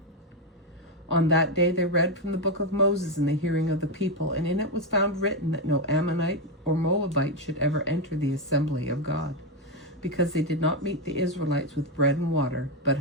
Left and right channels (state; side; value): normal; both; correlation 0.06